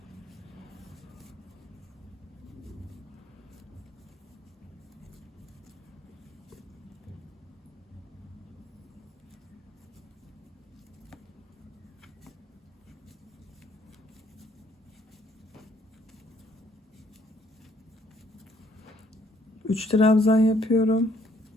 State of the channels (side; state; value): both; normal; correlation 0.65